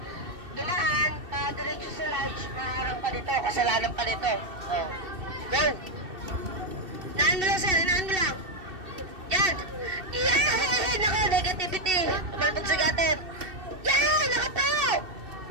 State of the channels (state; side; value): late; left; 2.7 ms